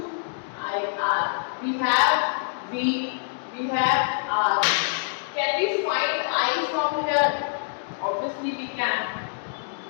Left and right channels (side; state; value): right; silent; digital silence